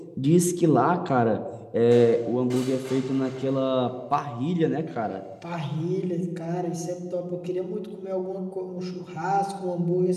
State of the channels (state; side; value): identical; both; correlation 1.00